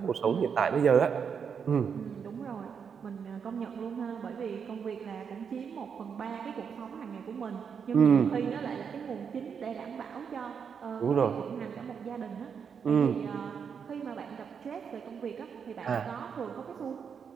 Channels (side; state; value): left; quieter; 6.8 dB